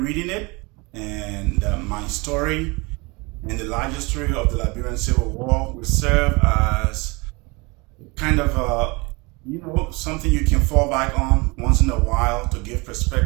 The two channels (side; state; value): left; quieter; 26.5 dB